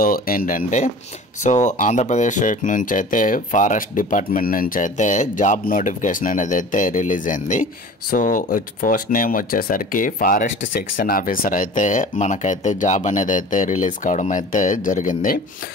ఏంటంటే ఆంధ్రప్రదేశ్ స్టేట్ నుంచి అయితే ఫారెస్ట్ డిపార్ట్మెంట్ నుంచి అయితే జాబ్ నోటిఫికేషన్ అనేది అయితే రిలీజ్ అయింది. పోస్ట్ నేమ్ వచ్చేసరికి ఫారెస్ట్ సెక్షన్ ఆఫీసర్ అయితే మనకైతే జాబ్ అనేది అయితే రిలీజ్ కావడం అయితే జరిగింది.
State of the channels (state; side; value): normal; both; correlation 0.41